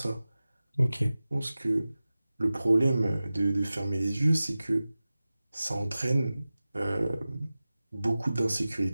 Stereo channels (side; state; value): both; inverted; correlation -0.96